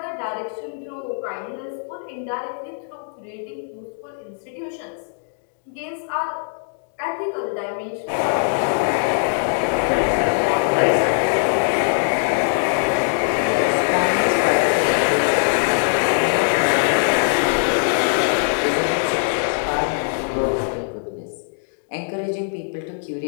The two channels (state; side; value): silent; right; digital silence